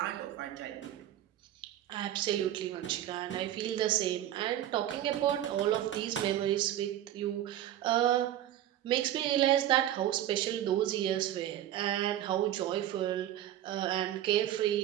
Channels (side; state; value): left; quieter; 12.3 dB